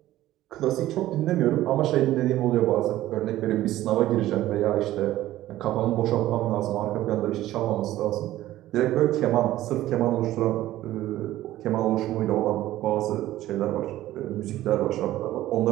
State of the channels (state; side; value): quieter; left; 14.8 dB